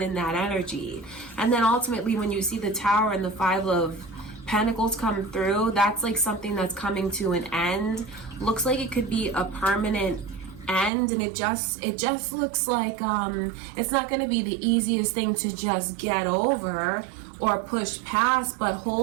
in that energy? And then ultimately, when you see the Tower and the Five of Pentacles come through, that's like something that's coming to an end. Looks like it could be a permanent end, and it just looks like it's not going to be the easiest thing to just get over or push past, but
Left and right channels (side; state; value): left; drops out; at 10.9 s